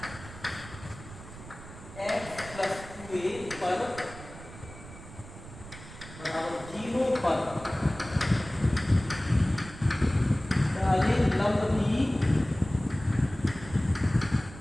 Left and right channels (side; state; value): right; noise; rumble, 15 dB below the sound